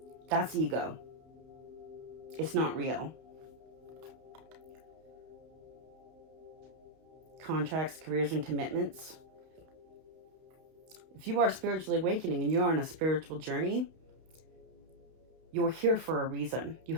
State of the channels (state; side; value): late; left; 31 ms